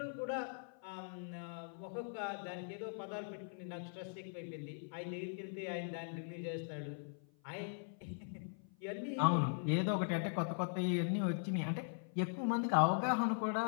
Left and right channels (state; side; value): silent; right; 51 dB below the other